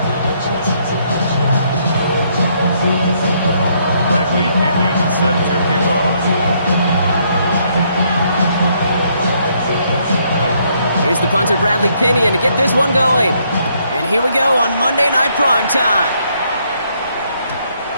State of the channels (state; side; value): inverted; both; correlation -0.71